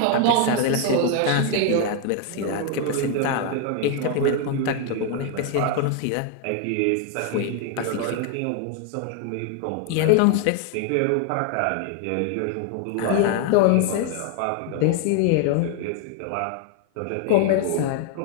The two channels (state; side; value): different; both; correlation 0.01